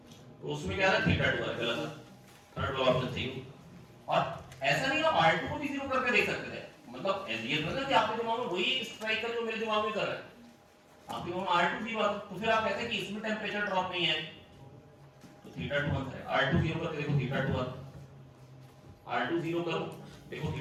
तो उसमें क्या आ रहा है, थीटा 2 आ रहा है, गलत है, थर्ड वाला ऑप्शन सही। और ऐसा नहीं आप R2 को भी 0 करके देख सकते थे, मतलब ये तो ना कि आपके दिमाग में वही स्ट्राइक कर जो मेरे दिमाग में कर रहा है, आपके दिमाग में R2 0 आता, तो फिर आप कहते हैं कि इसमें टेम्परेचर ड्रॉप नहीं है, तो थीटा 2 आंसर है। R2 0 करके देखो थीटा 2 आता, R2 0 करो देखो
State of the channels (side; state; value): both; identical; correlation 1.00